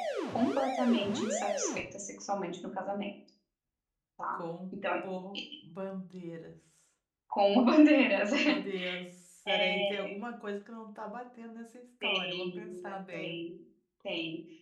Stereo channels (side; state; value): both; identical; correlation 1.00